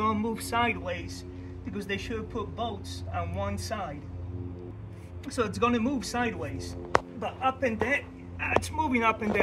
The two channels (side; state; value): both; identical; correlation 1.00